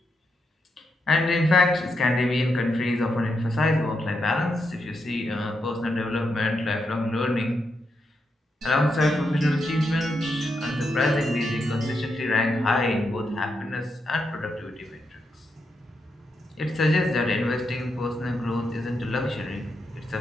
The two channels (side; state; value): both; normal; correlation 0.83